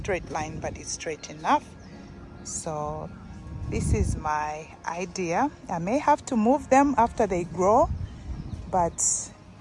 line, but it's straight enough. So this is my idea. I may have to move them after they grow, but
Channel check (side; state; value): both; identical; correlation 1.00